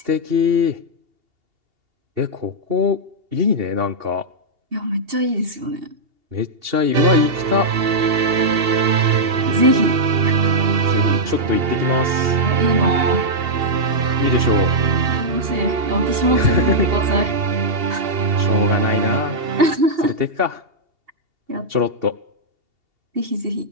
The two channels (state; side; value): late; left; 2.8 ms